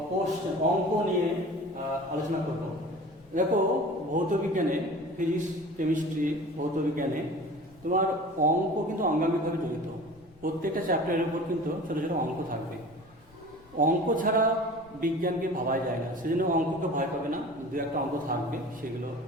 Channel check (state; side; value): noise; left; rumble, 26 dB below the sound